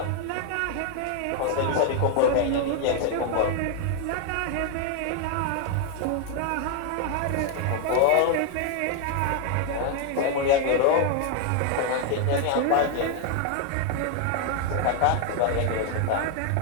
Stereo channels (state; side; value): different; both; correlation 0.00